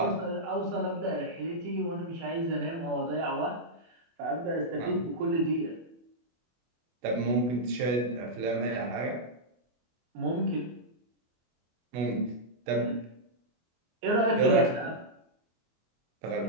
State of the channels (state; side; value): late; left; 24 ms